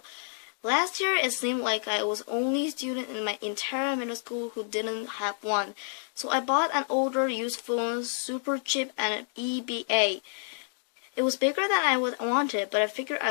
Last year, it seemed like I was the only student in my entire middle school who didn't have one, so I bought an older used phone, super cheap, and an EBA. It was bigger than I wanted, but I figured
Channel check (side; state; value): right; silent; 59 dB below the other